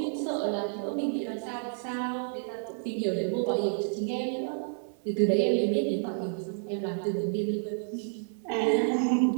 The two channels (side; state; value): left; silent; 58 dB below the other